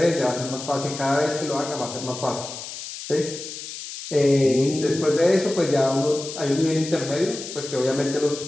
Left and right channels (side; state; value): left; noise; hiss, 10 dB below the sound